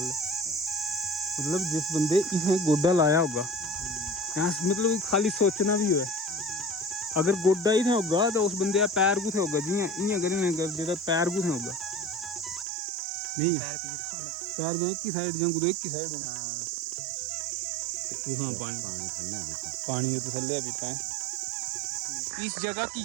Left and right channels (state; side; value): drops out; left; at 12.7 s